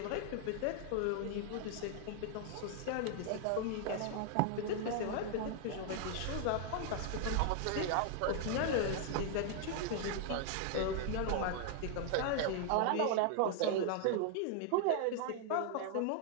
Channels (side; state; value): both; different; correlation 0.00